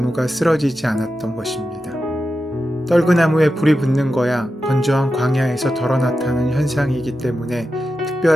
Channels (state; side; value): normal; both; correlation 0.90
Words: 쓰러지지 않았던 것입니다. 떨그나무에 불이 붙는 거야 건조한 광야에서 덜어 나타나는 현상이기 때문에